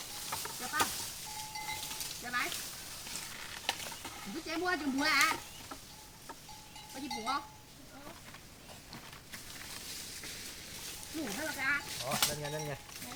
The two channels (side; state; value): both; identical; correlation 1.00